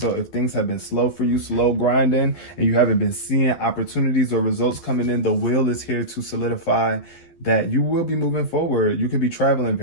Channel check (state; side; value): late; right; 12 ms